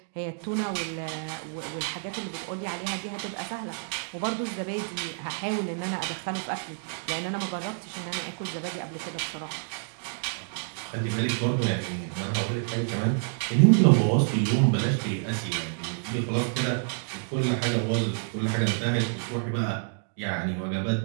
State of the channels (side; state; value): left; silent; digital silence